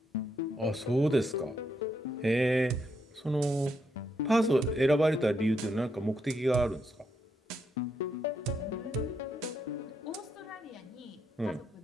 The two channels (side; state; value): both; normal; correlation 0.79